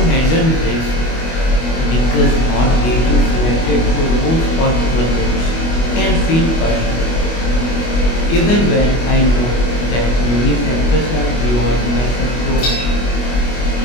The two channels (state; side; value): late; right; 25 ms